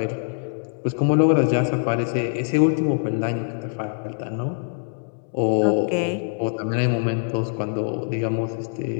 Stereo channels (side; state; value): right; silent; digital silence